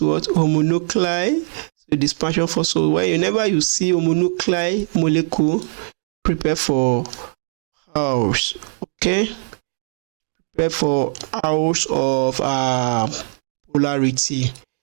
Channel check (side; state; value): left; silent; digital silence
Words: Homonuclei. So dispersion force. So whenever you see homonuclei molecule, prepare for hours. Okay, prepare for hours of polarity.